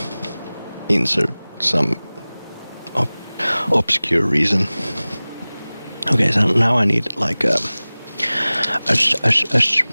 insert some obscure reason. Okay, so now I need like a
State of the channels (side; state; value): both; inverted; correlation -0.99